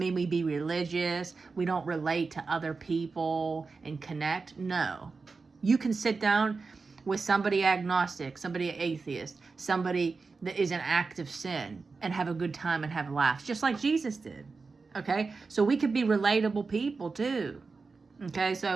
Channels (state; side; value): quieter; left; 4.3 dB